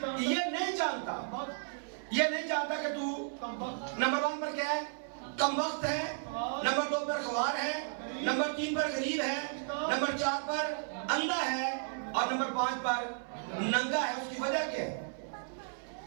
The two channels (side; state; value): left; silent; 55 dB below the other